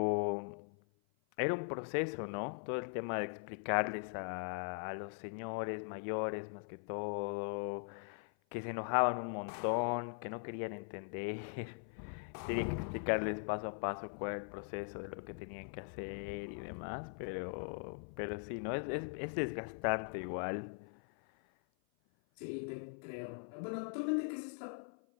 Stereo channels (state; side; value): silent; right; 51 dB below the other